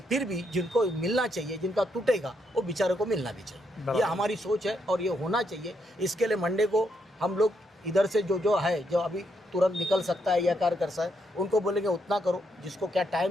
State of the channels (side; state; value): both; normal; correlation 0.77